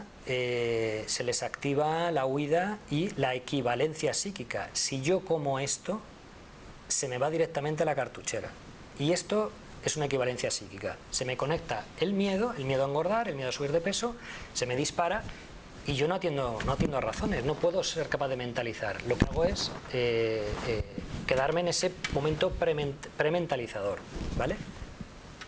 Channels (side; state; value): both; identical; correlation 1.00